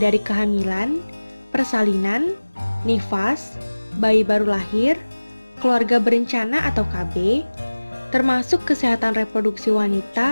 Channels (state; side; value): inverted; both; correlation -1.00